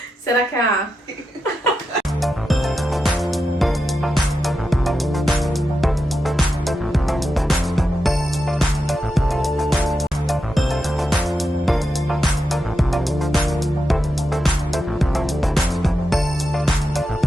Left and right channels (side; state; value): both; normal; correlation 0.88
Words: Será que a